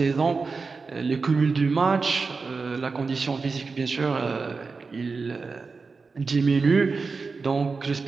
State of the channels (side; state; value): left; quieter; 4.4 dB